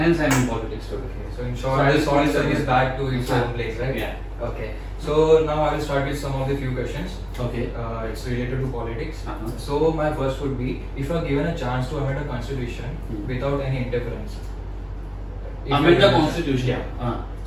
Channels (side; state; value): both; identical; correlation 1.00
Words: I am in politics today. So in short, this all is back to its own place, right? Yeah. Okay. So now I will start with some of the few questions. Okay. It's related to politics. Uh-huh. So my first would be, if you are given a chance to amend a constitution without any interference. Amend the constitution. Yeah.